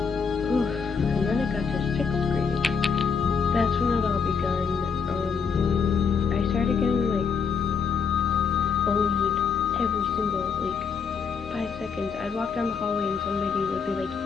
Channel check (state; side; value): quieter; right; 5.8 dB